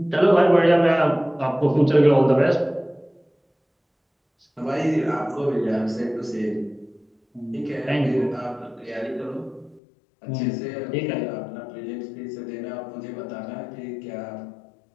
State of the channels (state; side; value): drops out; right; at 9.8 s